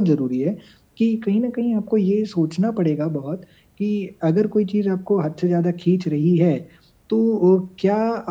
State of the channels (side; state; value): both; identical; correlation 1.00